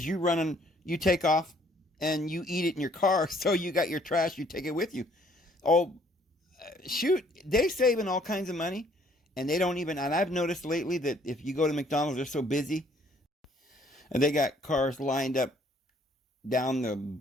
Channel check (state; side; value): normal; both; correlation 0.62